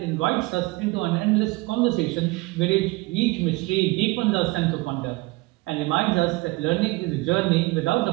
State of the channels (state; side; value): quieter; left; 22.7 dB